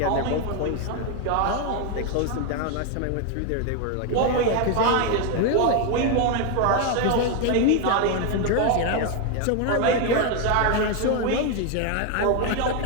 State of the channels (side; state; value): both; different; correlation 0.01